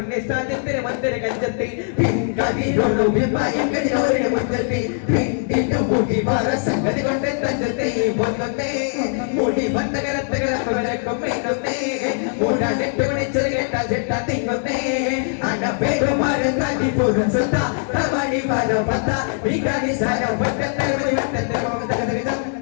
സാജത്തിര മന്ദിര കഞ്ചത്തെ പിൻകതിരൊരു വിഭയം കതിരോരുടെ മുറ്റത്തെ പിന്നിന്റെ മുടി വര സംഗതി കൊണ്ട് തഞ്ചത്തെ പൊന്നത്തെ മുടി വന്നകരത്തകരക്കും മേന്നത്തെ മൂടാനെട്ട് മണിച്ചത് കേട്ട ചെട്ട തിങ്ങുന്നേ അന പേരുമാരൻ തടി പൂരം സുത്ത തമണി വര പത്ത വികാരി സാര വട്ടത്തെ വട്ടത്തെ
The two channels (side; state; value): right; silent; 61 dB below the other